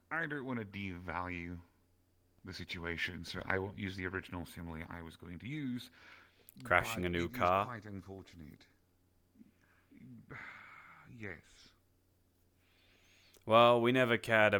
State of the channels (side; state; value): both; identical; correlation 1.00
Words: I don't want to devalue the situation, so I won't use the original simile I was going to use. Crashing a new it is car? quite unfortunate. Yes. Well, we never cared